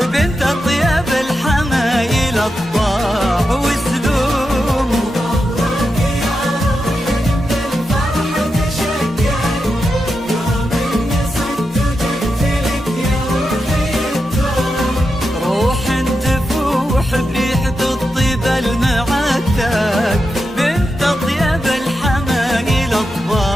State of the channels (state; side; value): normal; both; correlation 0.88